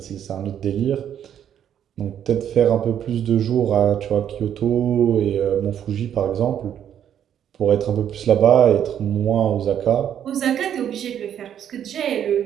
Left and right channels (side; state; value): left; quieter; 9.6 dB